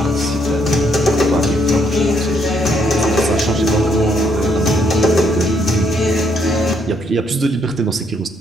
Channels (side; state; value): both; normal; correlation 0.72